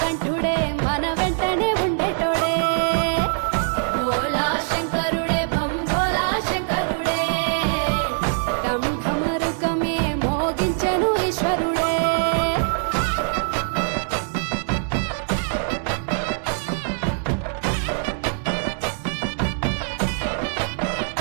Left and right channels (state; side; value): silent; left; 63 dB below the other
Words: మన వెంటనే ఉండేటోడే భోలా శంకరుడే భంభోలా శంకరుడే ఢం ఢమరుకమే మోగించెను ఈశ్వరుడే